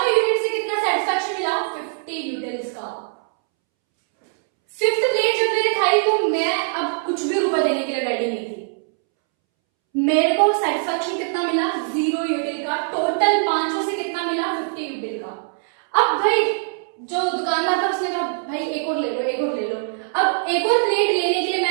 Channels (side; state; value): left; silent; 64 dB below the other